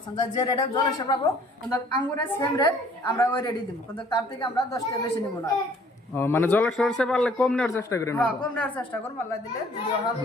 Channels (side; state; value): both; normal; correlation 0.57